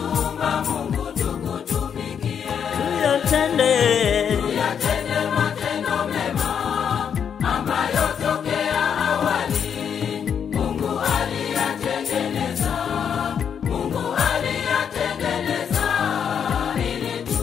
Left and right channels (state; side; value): quieter; right; 7.7 dB